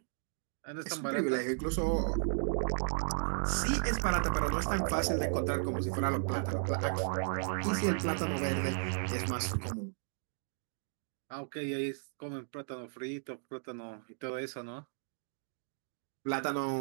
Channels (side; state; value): left; silent; digital silence